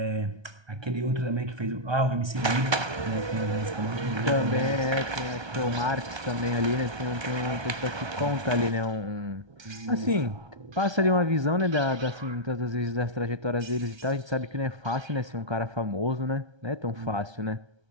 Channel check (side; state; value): left; late; 1.3 ms